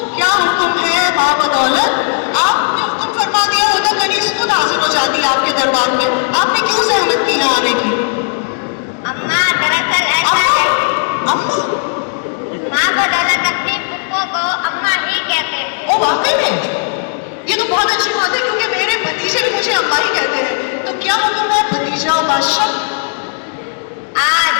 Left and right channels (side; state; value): right; silent; digital silence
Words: क्या हुक्म है माँ बदौलत? आपने हुक्म फरमा दिया होता कनीज खुद हाजिर हो जाती आपके दरबार में, आपने क्यों सहमत की है आने की? अम्मा दरअसल ऐसा है, अम्मा? माँ बदौलत अपनी पुप्पो को अम्मा ही कहते थे। ओ वाकई में? ये तो बहुत अच्छी बात है क्योंकि मेरे भतीजे भी मुझे अम्मा ही कहते हैं। तो क्या हुक्म है भतीजा बादशाह? आज